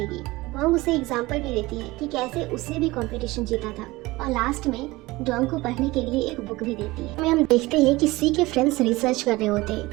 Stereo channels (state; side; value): quieter; left; 20.6 dB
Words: वांग उसे एग्जाम्पल भी देती है कि कैसे उसने भी कंपटीशन जीता था और लास्ट में डोंग को पढ़ने के लिए एक बुक भी देती है। हम देखते हैं कि सी के फ्रेंड्स रिसर्च कर रहे होते